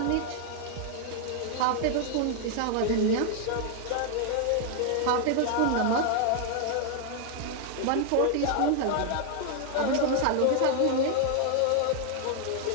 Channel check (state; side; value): different; both; correlation 0.00